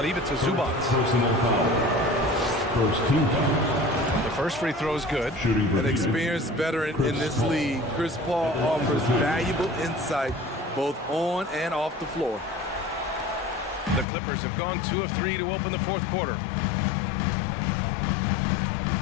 Ivica Zubac. Personal foul. First team foul. The first free throw is good. An experienced veteran in this league, Chris Paul offers valuable insight both on and off the floor. The Clippers have gone 2 of 3 to open the fourth quarter.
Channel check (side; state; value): right; drops out; at 14.1 s